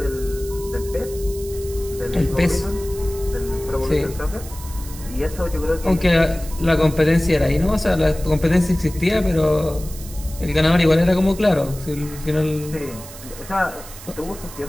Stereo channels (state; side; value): noise; right; hiss, 15 dB below the sound